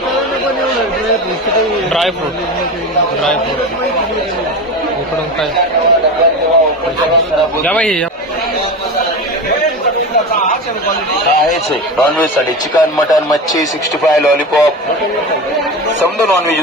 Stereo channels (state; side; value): normal; both; correlation 0.26